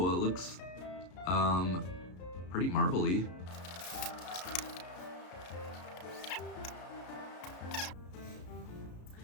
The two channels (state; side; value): late; right; 33 ms